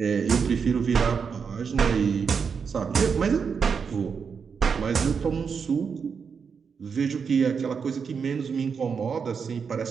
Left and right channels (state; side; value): quieter; left; 6.1 dB